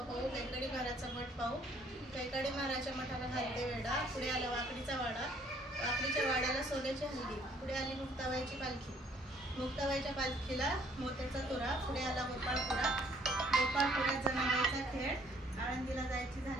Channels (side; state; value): both; normal; correlation 0.62